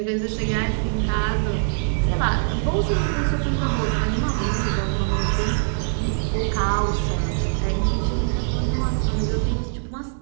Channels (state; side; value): silent; left; digital silence